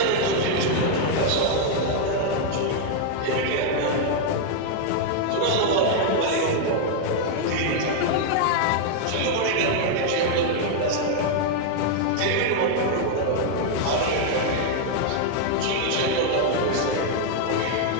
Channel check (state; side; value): different; both; correlation 0.00